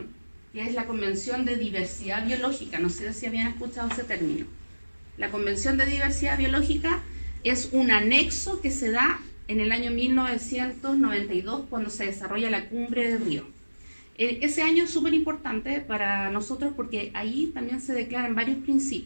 que es la Convención de Diversidad Biológica. No sé si habían escuchado ese término. La Convención de Diversidad Biológica es un anexo que se da en el año 1992, cuando se desarrolla la Cumbre de Río. Ese año es súper importante para nosotros porque ahí también se declaran varios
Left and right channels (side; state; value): both; inverted; correlation -1.00